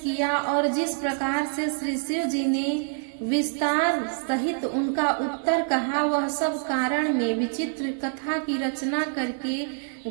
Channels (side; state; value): left; silent; 61 dB below the other